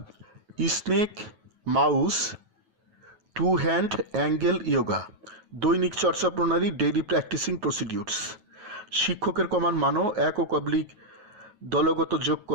snake mouse to hand angle yoga. দৈনিক চর্চা প্রণালী ডেইলি প্র্যাকটিসিং প্রসিডিউরস। শিক্ষকের কমান মানো একক অবলিক দলগত যোগ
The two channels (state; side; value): late; left; 9.3 ms